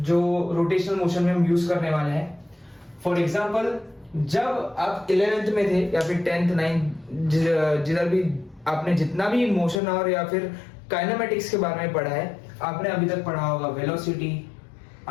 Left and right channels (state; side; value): drops out; right; at 9.8 s